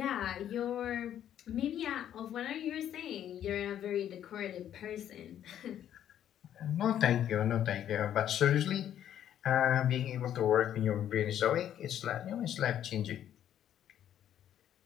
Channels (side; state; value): right; quieter; 10.5 dB